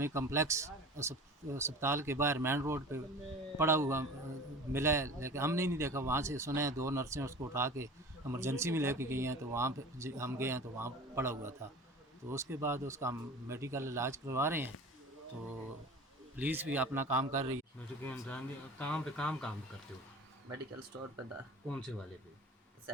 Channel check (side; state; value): both; normal; correlation 0.38